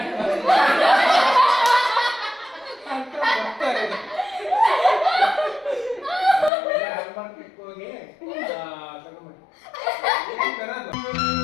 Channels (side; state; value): right; drops out; at 6.5 s